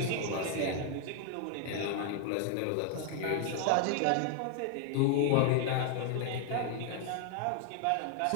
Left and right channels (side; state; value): both; different; correlation 0.00